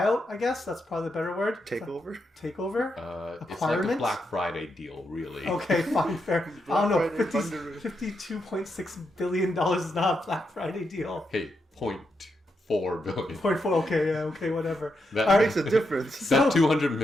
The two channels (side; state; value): both; normal; correlation 0.83